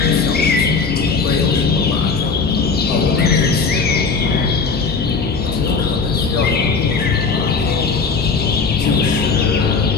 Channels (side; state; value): right; quieter; 4.7 dB